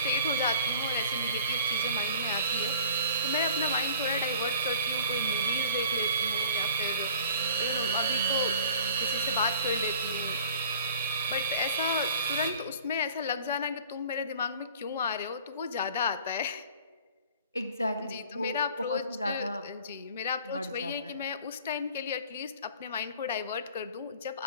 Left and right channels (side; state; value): both; inverted; correlation -0.49